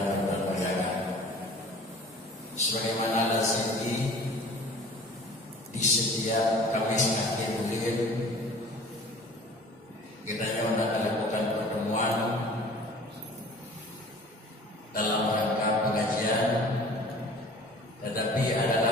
berbahagia. Sebagaimana lazimnya di setiap Kamis akhir bulan kita akan lakukan pertemuan dalam rangka pengajian, tetapi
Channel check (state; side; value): normal; both; correlation 0.46